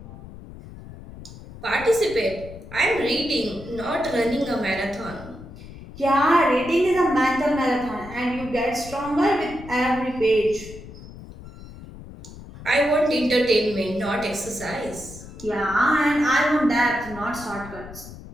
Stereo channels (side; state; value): left; noise; rumble, 15 dB below the sound